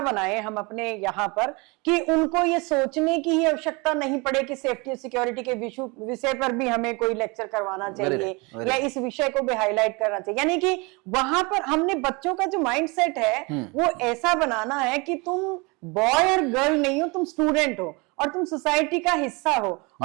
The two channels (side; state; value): left; quieter; 27.7 dB